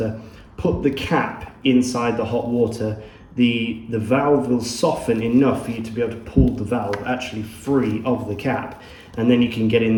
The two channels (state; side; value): identical; both; correlation 1.00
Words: put the cap inside the hot water. The valve will soften enough for you to be able to pull the valve actually free of the cap, and then you can get in